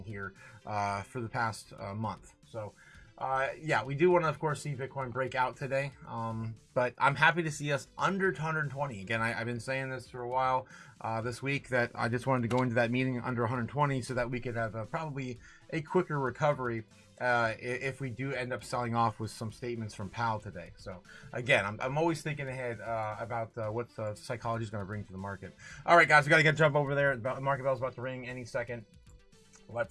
here for the past month. So yeah, we do want to, of course, see Bitcoin break out today, but I'm happy to see us under 120. Again, I've been saying this for a while this week, that I just wanted to go into that meeting under 120 so that we could have probably a quicker recovery if we do end up selling off with some statements from POWELL today. So again, I'm always thinking ahead about what psychology is going to bring to the market. All right, guys, we got to jump over there. The market bell's about to ring any second.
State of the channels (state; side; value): identical; both; correlation 1.00